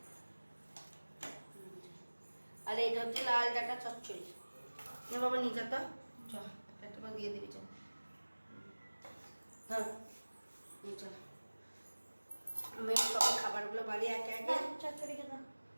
আর এইটা হচ্ছে লাল ডাটা চচ্চড়ি। না বাবা নিয়ে যা তো, চল একটা দিয়ে দিবি, চল ধর নিয়ে চল। আমি সব খাবারগুলো বাড়ি একে একে। চচ্চড়িটা দাও,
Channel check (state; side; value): inverted; both; correlation -1.00